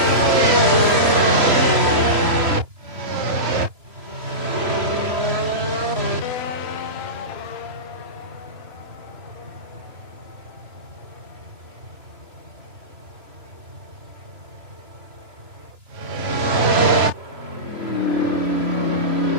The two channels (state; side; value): late; left; 2.9 ms